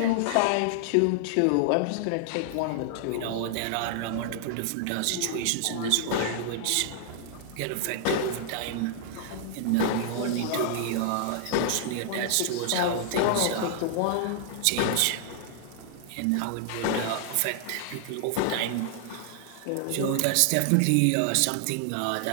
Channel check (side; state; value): both; different; correlation -0.01